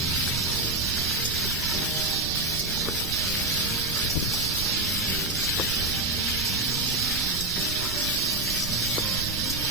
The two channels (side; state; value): right; noise; rumble, 6 dB below the sound